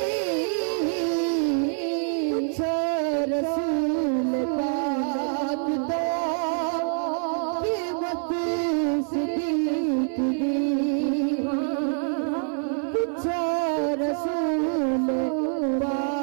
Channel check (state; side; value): silent; left; 57 dB below the other